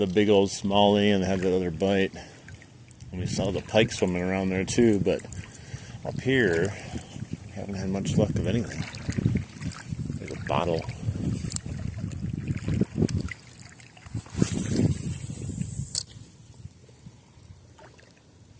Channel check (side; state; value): both; identical; correlation 1.00